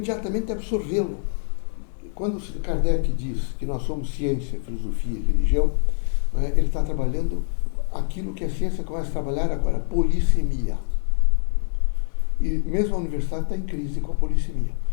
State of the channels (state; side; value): silent; right; 62 dB below the other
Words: absorvê-lo. Quando Kardec diz que nós somos ciência, filosofia e religião, ele está trabalhando aquilo que a ciência começa a trabalhar agora, polissemia. E mesmo a universidade está em crise com a polissemia.